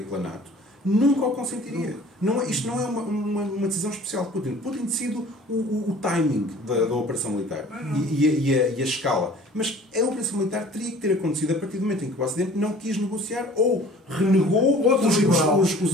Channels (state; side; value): normal; both; correlation 0.49